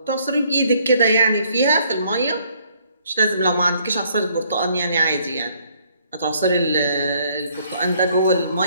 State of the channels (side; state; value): both; inverted; correlation -0.65